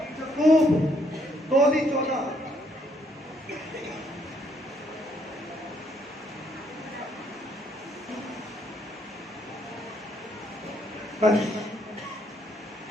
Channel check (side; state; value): both; normal; correlation 0.71